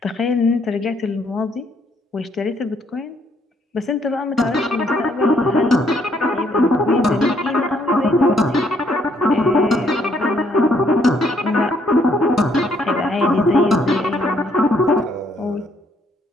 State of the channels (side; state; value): both; normal; correlation 0.69